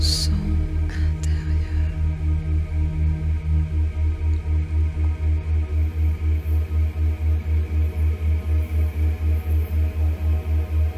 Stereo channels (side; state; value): both; identical; correlation 1.00